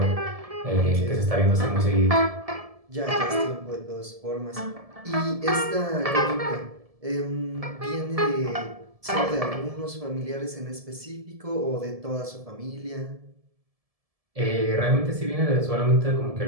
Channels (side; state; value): left; late; 1.7 ms